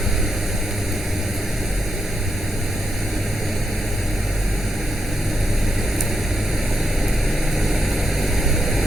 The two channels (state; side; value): normal; both; correlation 0.84